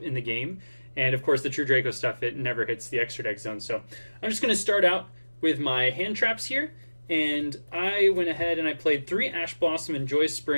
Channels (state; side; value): inverted; both; correlation -1.00